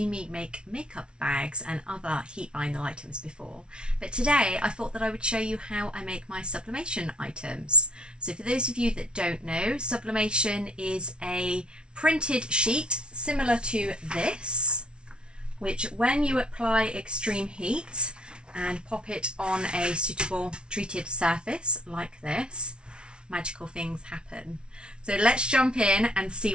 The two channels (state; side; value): late; left; 0.056 ms